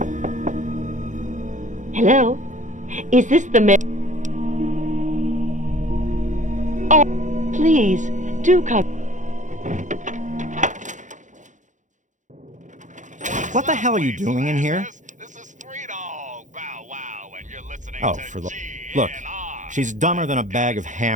Hello? Is this the mayor? Oh, please, do come. What the hell are you doing in here? This is Three Dog Bow Wow, and you're listening Oh, to for the... GNR. Look, she's dumber than a bag of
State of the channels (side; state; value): left; late; 0.36 ms